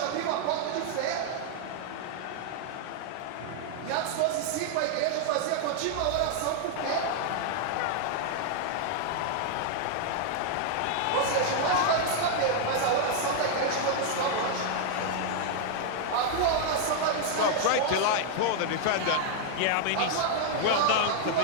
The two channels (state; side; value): different; both; correlation 0.00